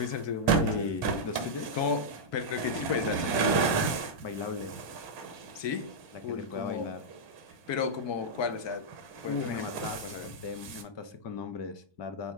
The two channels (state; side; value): late; right; 1.2 ms